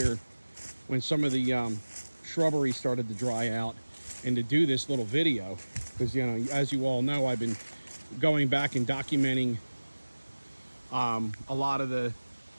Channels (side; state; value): both; inverted; correlation -1.00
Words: when some of the shrubbery started to dry out, and to do this little video, because, you know, as you all know, I've been going back and documenting a lot of the